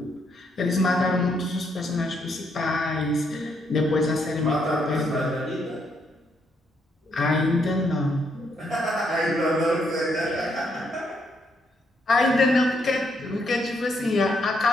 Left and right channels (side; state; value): both; normal; correlation 0.75